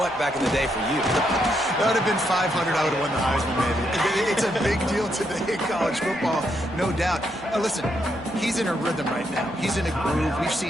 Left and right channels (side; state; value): right; noise; hum, 23 dB below the sound